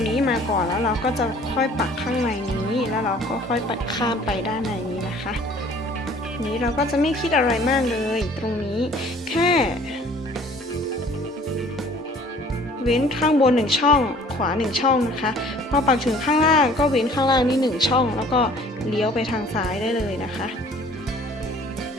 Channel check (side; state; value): both; normal; correlation 0.53